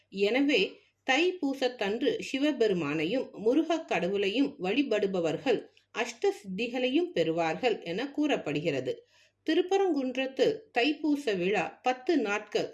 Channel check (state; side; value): identical; both; correlation 1.00